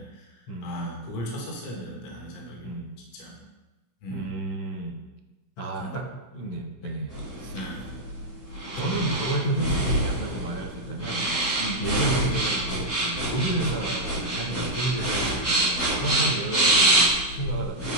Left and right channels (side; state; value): right; late; 16 ms